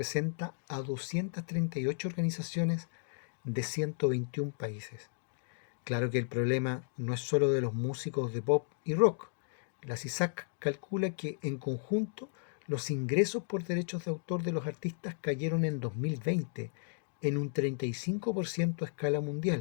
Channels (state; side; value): silent; right; digital silence